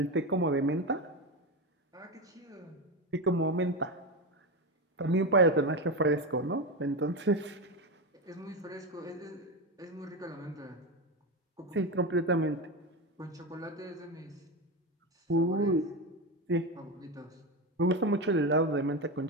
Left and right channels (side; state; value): both; normal; correlation 0.15